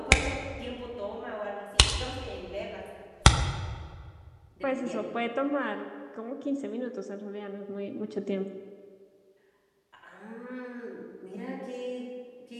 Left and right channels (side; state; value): both; identical; correlation 1.00